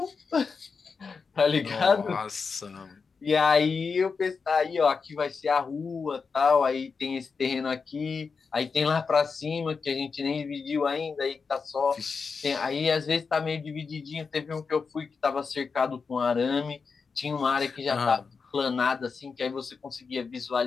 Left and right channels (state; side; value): quieter; right; 5.1 dB